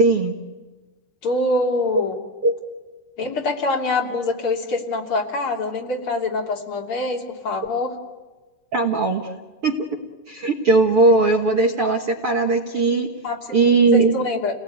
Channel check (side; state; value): both; normal; correlation 0.06